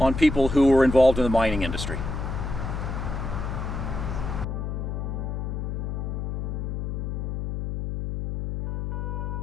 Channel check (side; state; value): left; noise; hum, 3 dB below the sound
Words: people who were involved in the mining industry.